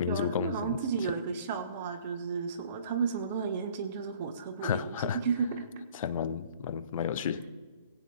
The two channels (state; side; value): inverted; both; correlation -0.51